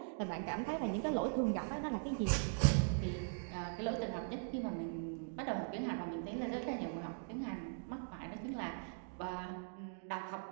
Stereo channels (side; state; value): left; silent; digital silence